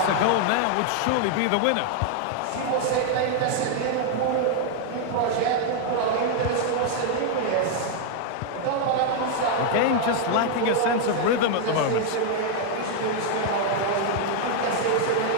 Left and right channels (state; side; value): different; both; correlation 0.00